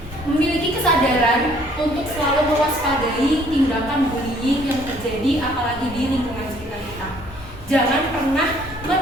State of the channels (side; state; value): both; normal; correlation 0.60